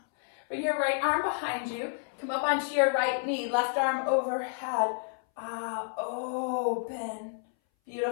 Bring your right arm behind you. Come up onto your right knee, left arm overhead. Open.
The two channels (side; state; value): right; silent; 58 dB below the other